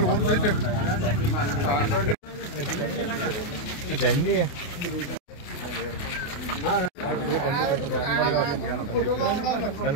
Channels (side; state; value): right; late; 28 ms